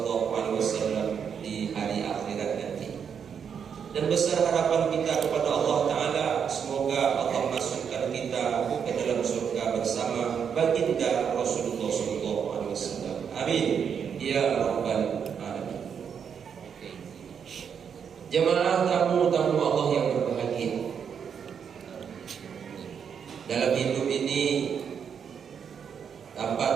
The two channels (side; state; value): left; quieter; 7.3 dB